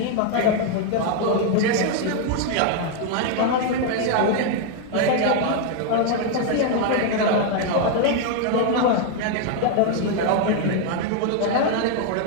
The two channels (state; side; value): different; both; correlation 0.01